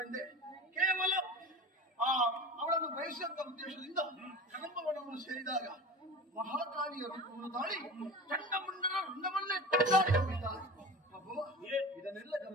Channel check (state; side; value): normal; both; correlation 0.33